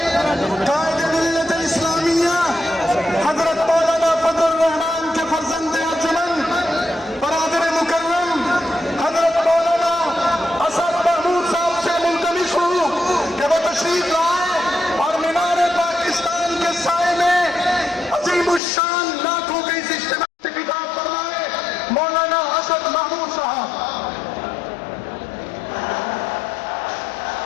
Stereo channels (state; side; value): drops out; right; at 18.6 s